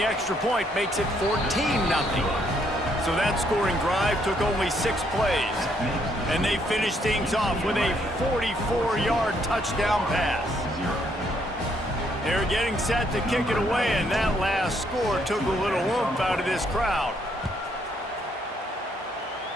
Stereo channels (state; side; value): normal; both; correlation 0.71